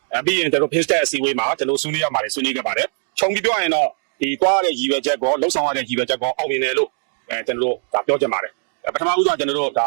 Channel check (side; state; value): left; silent; digital silence